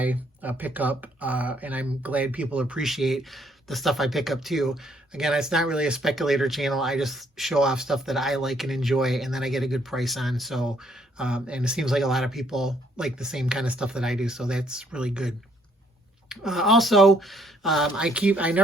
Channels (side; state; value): both; normal; correlation 0.67